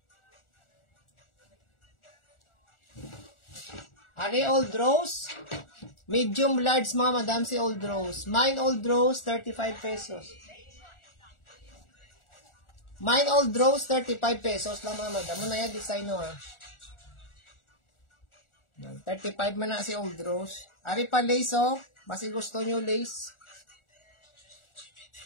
Ari old rose. Medium large mga madam si old rose. Mine old rose, 35 pesos. Mine old rose, 35 pesos lang mga madam. Muna yan, design no ha. 35 man na si old rose. Ari pa lace oh. Basi gusto nyo lace.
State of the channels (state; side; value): late; right; 1.4 ms